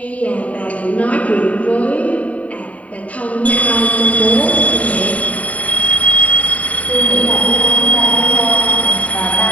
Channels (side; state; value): right; late; 0.068 ms